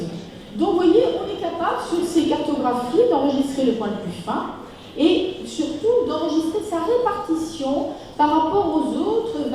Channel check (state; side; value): identical; both; correlation 1.00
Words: Donc, vous voyez, on est capable, sur ces cartographies, d'enregistrer le point le plus fin, et surtout d'enregistrer sa répartition par rapport aux autres